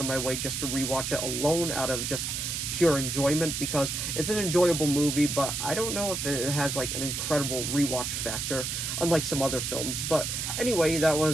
of my way just to rewatch it alone out of just pure enjoyment, because it's an enjoyable movie, but I don't know if it has like an incredible rewatch factor, unlike some other films. But anyway, that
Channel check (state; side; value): noise; right; hiss, 3 dB below the sound